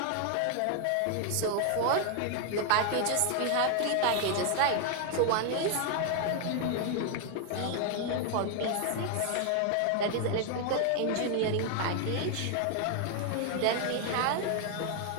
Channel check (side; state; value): both; different; correlation 0.00